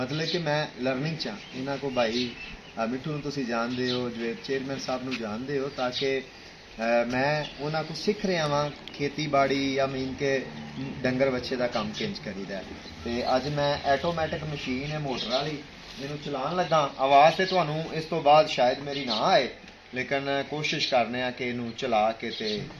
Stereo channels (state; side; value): identical; both; correlation 1.00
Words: कि मैं लर्निंग चा इन्हों को भाई मिठू तुसी जानते हो जो चेयरमैन साहब नूं जानते हो ताकि मैं उन्होंने को सीख रहा वहाँ खेती बाड़ी या मीन के डंगर बच्चे का काम किंज करीदा तो अज मैं ऐटोमैटिक मशीन है मोटर वाली मैनू चलान लगा आवाज़ तो तुहानू इस तो बाद शायद मेरी ना आए लेकिन कोशिश करने कि इनू चला के ते